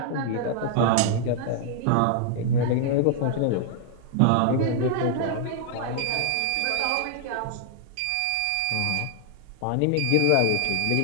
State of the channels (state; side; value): different; both; correlation 0.00